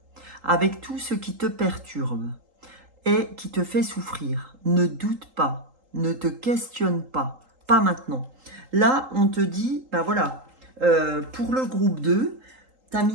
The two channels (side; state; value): left; late; 3.8 ms